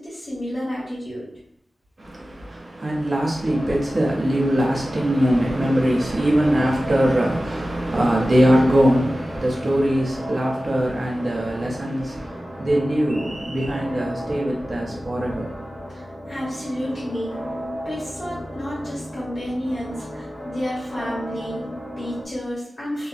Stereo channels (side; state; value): both; normal; correlation 0.95